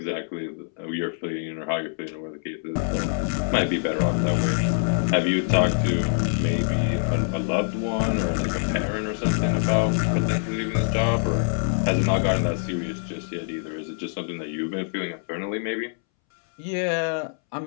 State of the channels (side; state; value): right; silent; 62 dB below the other